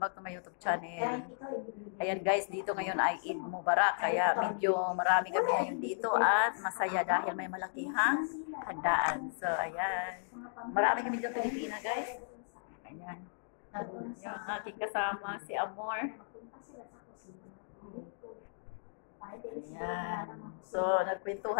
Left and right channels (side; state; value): right; silent; digital silence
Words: to my YouTube channel. Ayan guys, dito ngayon ay Eid Mubarak, kaya medyo marami kami ngayon dito at masaya dahil may malakihang handaan. So ayan, marami kami dito Pilipina guys. Ayan, yung aking kasama si Amor. Ayan, so